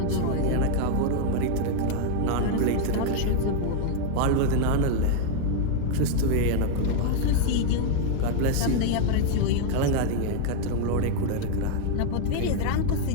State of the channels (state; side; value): different; both; correlation 0.00